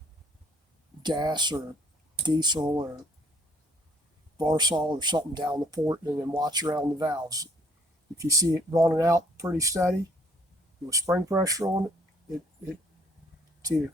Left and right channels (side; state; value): both; normal; correlation 0.63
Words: gas or diesel or Varsol or something down the port and then watch around the valves. If you see it running out pretty steady with spring pressure on it's either